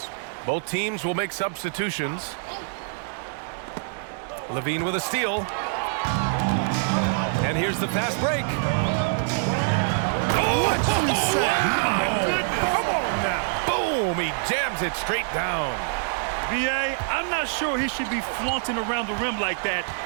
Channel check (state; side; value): silent; left; 62 dB below the other